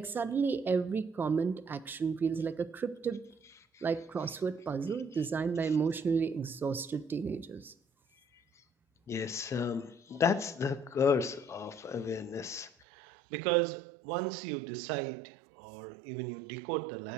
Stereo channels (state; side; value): drops out; left; at 12.9 s